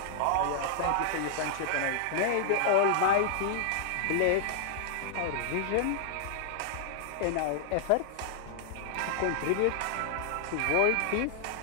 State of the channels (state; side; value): different; both; correlation -0.01